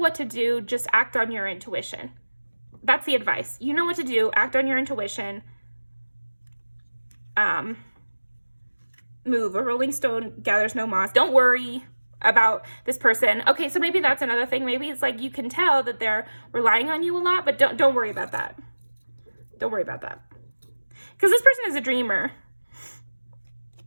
to do, just act on your intuition. That's the advice. You know what to do, act on your intuition. Move. A rolling stone gathers no moss. Don't worry. about this person. Okay, so maybe that's another thing. Maybe it's like you can tell that they're relying on you a lot, but don't worry about that. Don't worry about that. Because this person is a dreamer.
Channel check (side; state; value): both; inverted; correlation -1.00